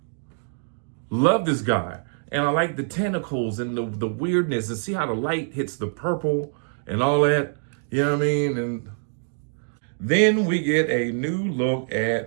Love this guy. And I like the tentacles and the weirdness, and see how the light hits the purple and all that. You know what I mean? And then we get a new look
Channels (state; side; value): silent; left; 62 dB below the other